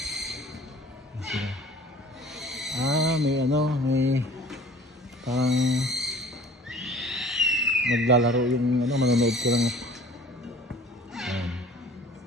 May ano, may parang naglalaro yung ano, manonood ko lang.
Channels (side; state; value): both; normal; correlation 0.48